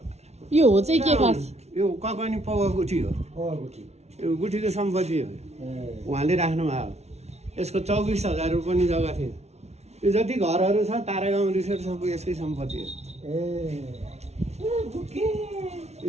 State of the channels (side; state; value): left; late; 0.31 ms